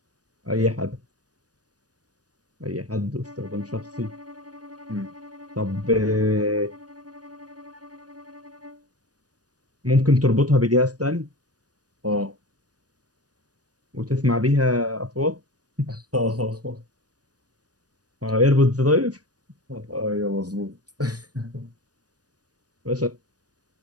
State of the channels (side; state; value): left; late; 0.68 ms